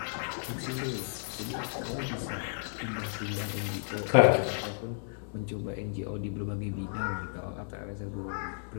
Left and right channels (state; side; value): silent; right; digital silence